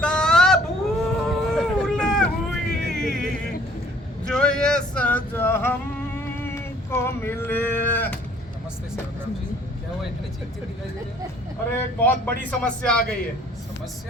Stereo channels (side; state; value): both; normal; correlation 0.57